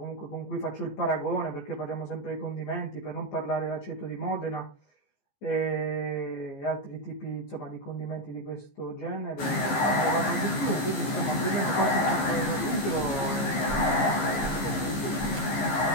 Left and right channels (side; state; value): right; late; 14 ms